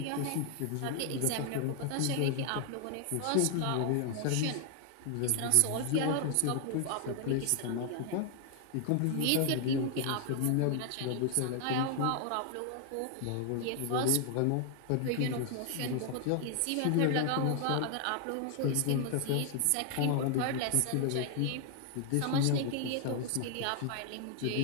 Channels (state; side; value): different; both; correlation 0.00